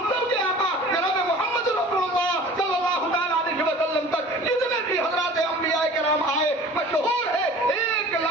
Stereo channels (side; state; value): both; normal; correlation 0.44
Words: سب کے آقا جناب محمد رسول اللہ صلی اللہ تعالی علیہ وسلم تک جتنے بھی حضرات انبیاء کرام آئے، مشہور ہے